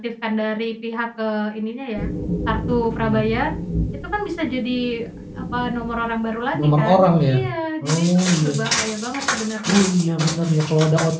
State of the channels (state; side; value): identical; both; correlation 1.00